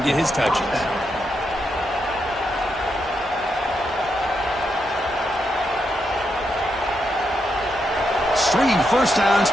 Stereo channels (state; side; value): normal; both; correlation 0.82